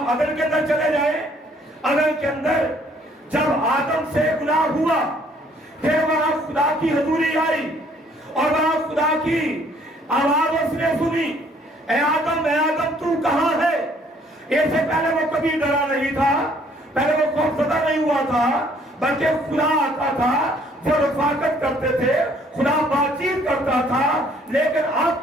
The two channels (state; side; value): normal; both; correlation 0.62